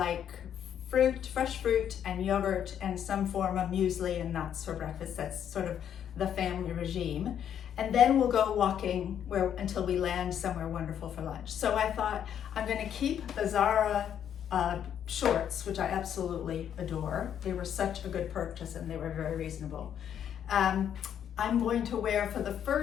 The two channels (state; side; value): quieter; right; 9.3 dB